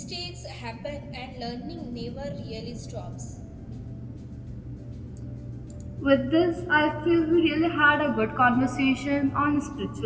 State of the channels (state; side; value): identical; both; correlation 1.00